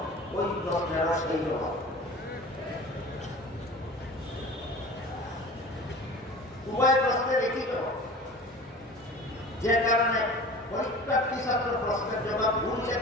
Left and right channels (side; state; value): both; normal; correlation 0.38